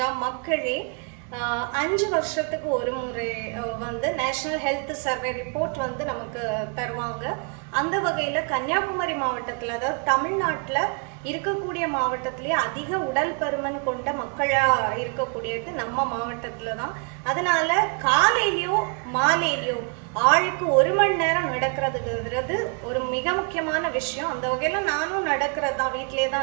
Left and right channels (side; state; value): left; quieter; 39.3 dB